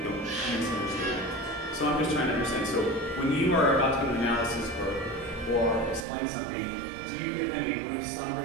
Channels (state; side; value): drops out; left; at 6.1 s